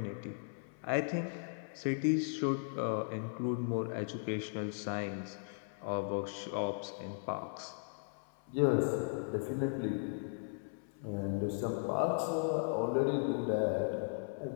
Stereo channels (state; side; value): silent; right; 53 dB below the other